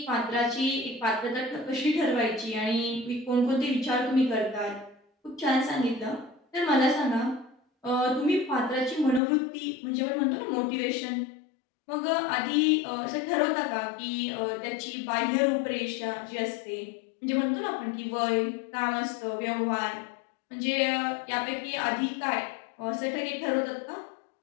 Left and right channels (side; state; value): right; drops out; at 9.2 s